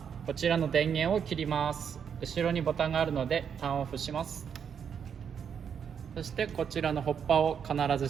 こちらの電源を切ります。後ろにボタンがあるのでターンオフします。そしてこちらのホッパーを必ず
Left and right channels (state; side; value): quieter; left; 7.5 dB